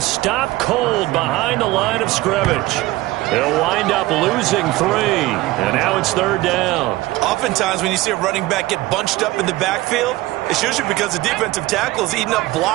cold behind the line of scrimmage. He'll wind up losing 3. And now it's 3rd down. Oftentimes when you see a running back get bunched up in the backfield, it's usually because the defensive tackle is eating up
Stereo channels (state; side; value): quieter; left; 18.5 dB